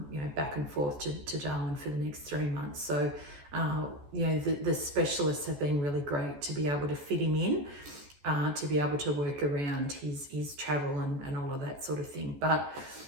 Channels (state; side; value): late; left; 14 ms